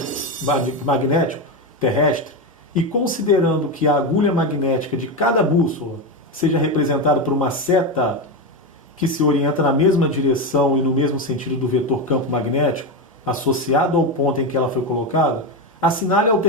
magnético terrestre e considerando que a agulha magnética de cada bússola seja representada por uma seta que se orienta na mesma direção e no mesmo sentido do vetor campo magnético, associado ao ponto em que ela foi colocada, assinale a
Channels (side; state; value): both; normal; correlation 0.13